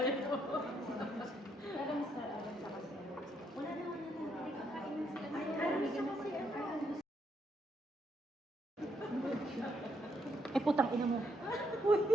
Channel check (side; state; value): both; normal; correlation 0.75